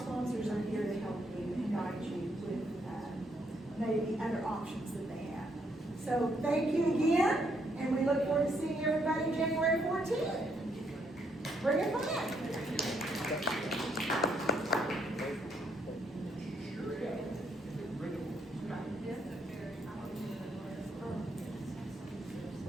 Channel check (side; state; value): both; normal; correlation 0.74